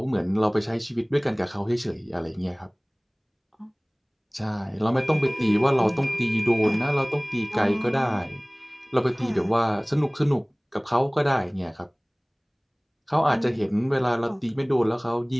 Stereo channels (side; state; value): both; identical; correlation 1.00